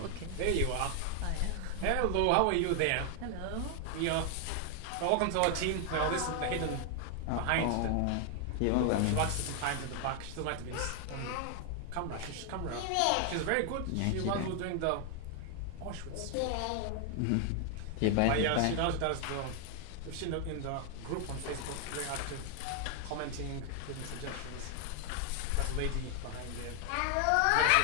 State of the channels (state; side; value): different; both; correlation 0.00